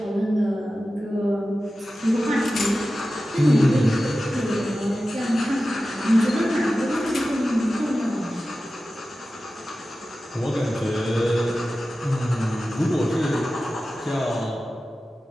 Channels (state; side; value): normal; both; correlation 0.94